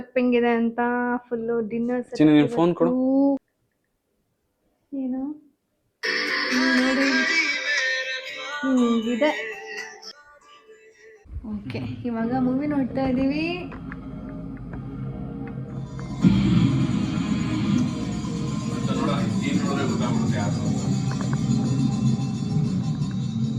ಹೆಂಗಿದೆ ಅಂತ, ಫುಲ್ ಡಿನ್ನರ್ ಸೆಟಪ್. ಫೋನ್ ಕೊಡು. ಏನು ನೋಡಿ ಹಿಂಗಿದೆ. ಓಕೆ, ಇವಾಗ ಮೂವಿ ನೋಡ್ತಾ ಇದೀವಿ.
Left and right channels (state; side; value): identical; both; correlation 1.00